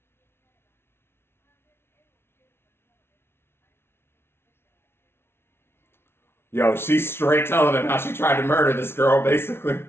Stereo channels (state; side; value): late; right; 0.12 ms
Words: Yo, she's straight telling him how she tried to murder this girl, basically.